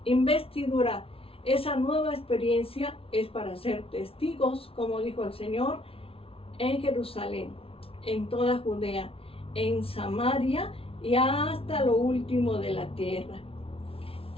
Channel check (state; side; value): late; right; 0.27 ms